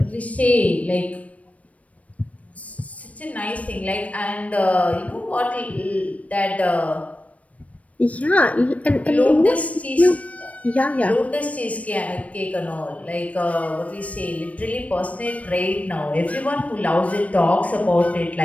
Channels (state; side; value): late; right; 0.067 ms